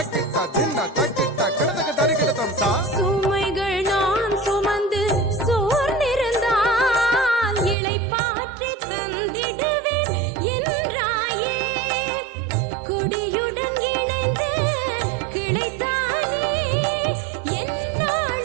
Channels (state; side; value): drops out; left; at 7.8 s